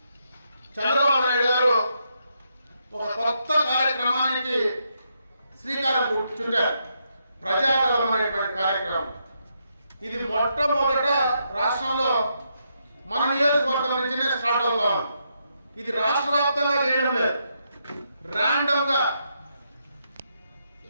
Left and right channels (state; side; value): inverted; both; correlation -0.80